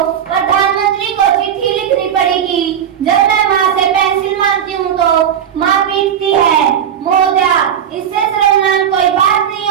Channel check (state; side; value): quieter; left; 8.9 dB